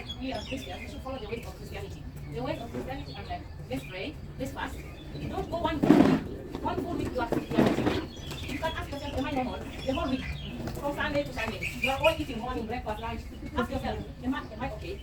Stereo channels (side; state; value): both; identical; correlation 1.00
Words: are Christians, we should follow the ways of Christianity. The ways of Christianity are like, let's pray, let's fast. Don't go one full week you are Christianity. You can ask yourself, am I normal? The whole week, from Sunday to Sunday, you are all eating morning, breakfast, lunch. Ask yourself, am I okay?